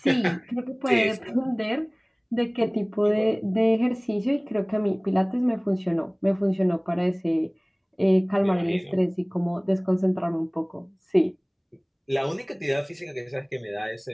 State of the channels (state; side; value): identical; both; correlation 1.00